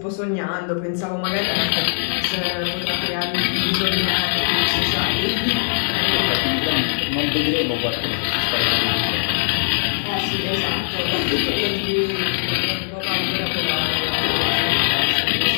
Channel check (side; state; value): right; silent; digital silence